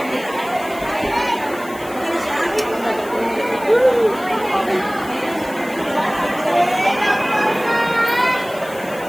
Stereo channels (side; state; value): left; noise; hiss, 19 dB below the sound